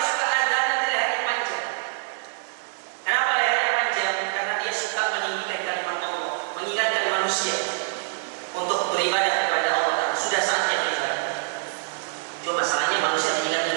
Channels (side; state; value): left; silent; digital silence